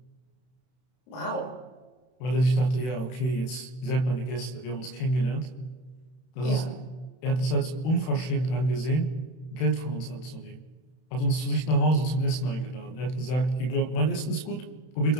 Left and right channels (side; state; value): right; late; 32 ms